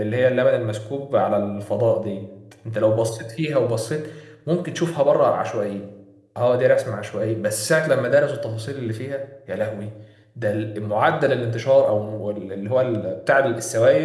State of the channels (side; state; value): both; identical; correlation 1.00